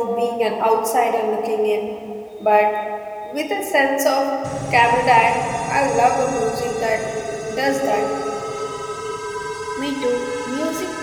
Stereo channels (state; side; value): identical; both; correlation 1.00